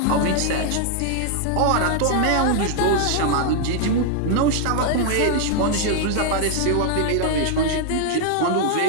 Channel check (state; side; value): different; both; correlation 0.00